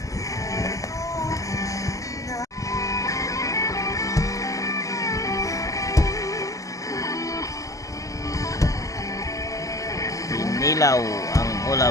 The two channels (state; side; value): late; right; 0.16 ms